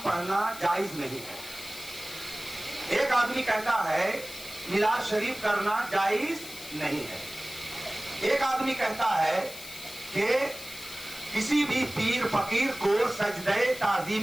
पढ़ना जायज नहीं है। एक आदमी कहता है मिलाद शरीफ करना जायज नहीं है। एक आदमी कहता है कि किसी भी पीर फकीर को सजदे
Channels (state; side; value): noise; left; hiss, 13 dB below the sound